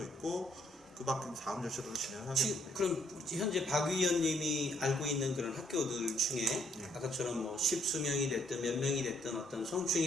있고 그 밖에 다음 절차들을 진행하겠는데. 그럼 현재 박 위원님이 알고 있는 그런 학교들 중에 아까처럼 뭐 십수명이 됐든 몇 명이 됐든 어떤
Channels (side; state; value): both; normal; correlation 0.69